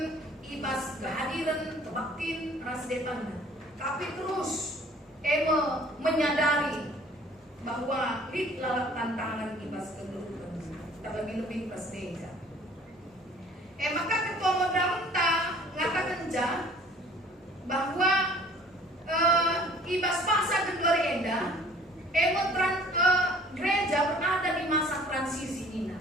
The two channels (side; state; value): both; normal; correlation 0.52